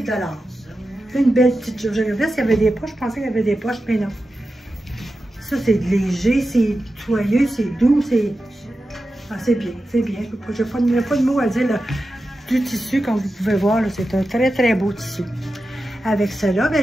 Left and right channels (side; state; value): both; normal; correlation 0.92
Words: $. Une belle petite jupe. Je regardais s'il y avait des poches. Je pensais qu'il y avait des poches, mais non. Ça, c'est léger, c'est soyeux, c'est doux, c'est... Ah, c'est bien, c'est bien. Je n'ai pas de mots à dire. Là. Du tissu, comme vous pouvez voir, c'est un très, très beau tissu. Avec cela, ben,